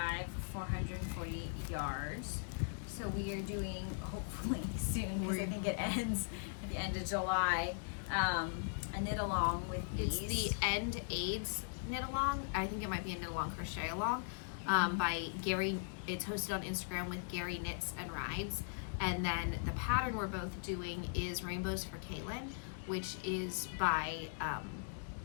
440 yards. So we are doing, hopefully soon, because I think it ends at the end of July, a knit along with these. It's the End AIDS knit along. I think it might be a knit along crochet along by Gary. It's hosted on Instagram with Gary Knits and Rides. And then the pattern we're both doing is Rainbows for Caitlin, which is by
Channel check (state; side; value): silent; right; digital silence